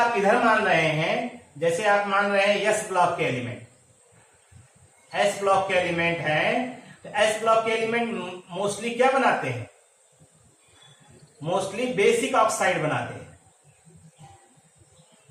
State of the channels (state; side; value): identical; both; correlation 1.00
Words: इधर मान रहे हैं, जैसे आप मान रहे हैं एस ब्लॉक के एलिमेंट, एस ब्लॉक के एलिमेंट हैं, तो एस ब्लॉक के एलिमेंट मोस्टली क्या बनाते हैं? मोस्टली बेसिक ऑक्साइड बनाते हैं।